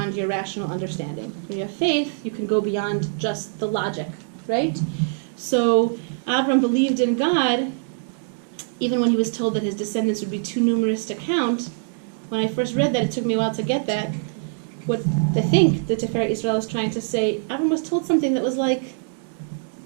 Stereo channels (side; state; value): left; silent; digital silence